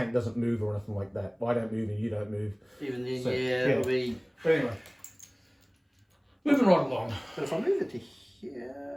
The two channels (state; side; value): identical; both; correlation 1.00